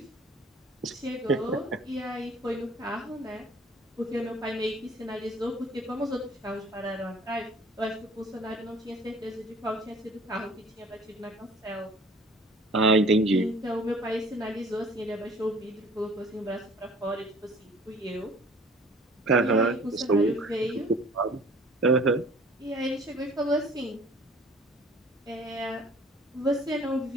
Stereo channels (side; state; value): both; normal; correlation 0.50